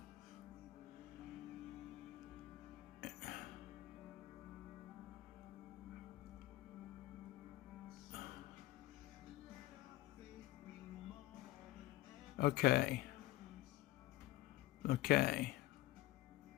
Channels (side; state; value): right; quieter; 16.7 dB